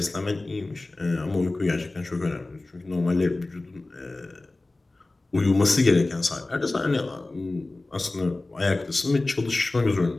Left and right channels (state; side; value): quieter; right; 3.0 dB